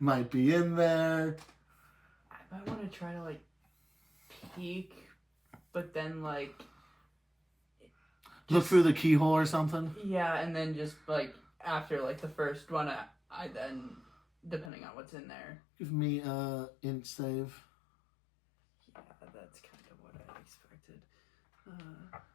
be in there. I might want to try to like peek, but then like Look through the keyhole or something. yeah, and then just like after like the first one, I then depending on what's in there. Give me int save. Yeah, that's kind of what I expected.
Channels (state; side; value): drops out; right; at 14.7 s